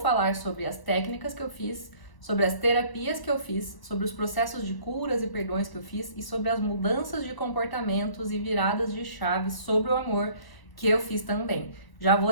sobre as técnicas que eu fiz, sobre as terapias que eu fiz, sobre os processos de curas e perdões que eu fiz e sobre as mudanças de comportamentos e viradas de chave sobre o amor que eu fiz também. Já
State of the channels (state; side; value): late; right; 1.0 ms